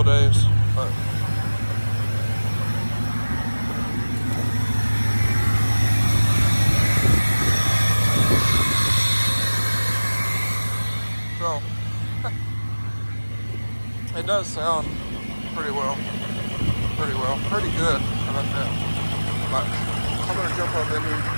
days, but so it does sound pretty good. How about that? But I'm gonna jump up in here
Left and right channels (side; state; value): both; inverted; correlation -1.00